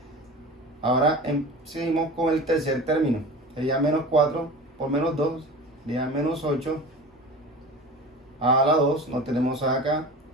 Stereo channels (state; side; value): normal; both; correlation 0.34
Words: Ahora seguimos con el tercer término, sería menos 4 por menos 2, sería menos 8, a la 2, no tenemos a acá,